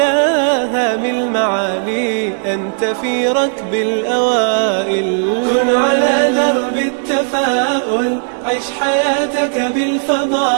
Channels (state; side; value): silent; left; 59 dB below the other